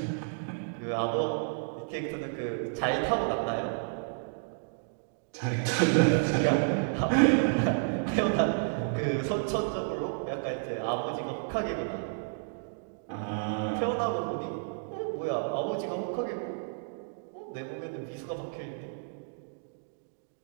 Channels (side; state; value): left; silent; digital silence